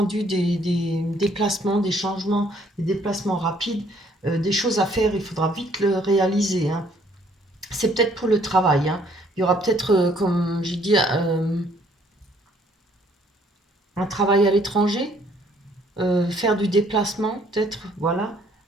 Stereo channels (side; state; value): both; normal; correlation 0.63